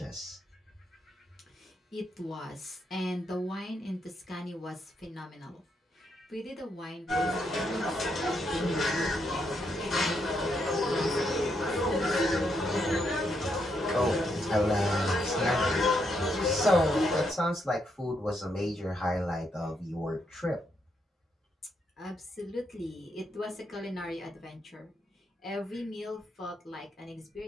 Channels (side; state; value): both; normal; correlation 0.78